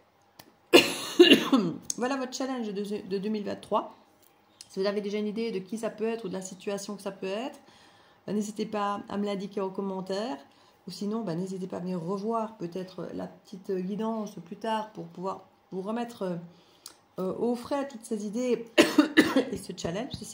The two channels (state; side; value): identical; both; correlation 1.00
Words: Voilà votre challenge de 2023. Si vous avez déjà une idée de qui ça peut être ou de la situation que ça peut être, n'hésitez pas à me l'indiquer en commentaire. Ou sinon, n'hésitez pas à venir revoir peut-être la petite guidance plus tard pour pouvoir vous remettre au frais toutes ces idées et ce challenge,